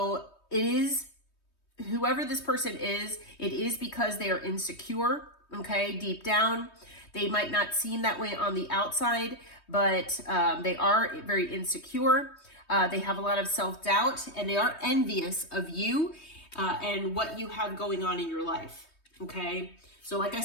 it is, whoever this person is, it is because they are insecure, okay, deep down. They might not seem that way on the outside, but they are very insecure. They have a lot of self-doubt, and they are envious of you and what you have going on in your life, okay? So like I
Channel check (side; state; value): right; late; 3.2 ms